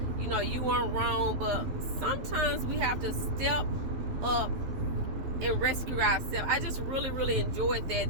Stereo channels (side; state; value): left; late; 12 ms